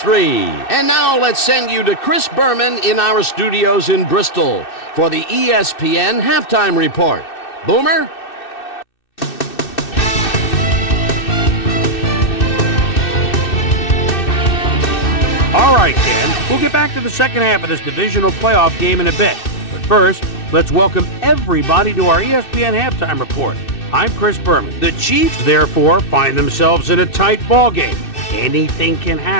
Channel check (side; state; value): right; late; 2.6 ms